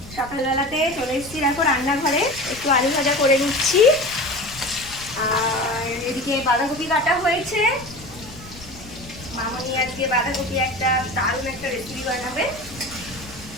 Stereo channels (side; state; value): left; noise; rumble, 18 dB below the sound